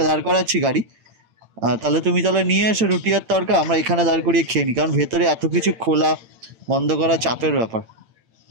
করাচ্ছি গাড়ি, তাহলে তুমি তাহলে নিয়ে এসো রুটি আর তড়কা, আমরা এখানে দাঁড় করিয়ে খেয়ে নিই, কারণ ভেতরে এত কিছু খোলা বন্ধ করা চাপের ব্যাপার।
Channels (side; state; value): left; late; 8.9 ms